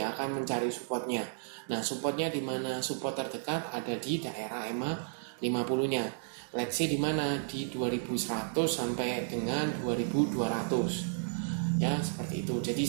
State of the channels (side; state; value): left; silent; digital silence